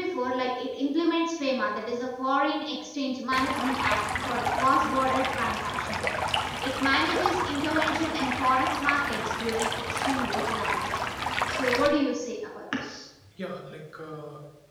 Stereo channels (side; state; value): both; identical; correlation 1.00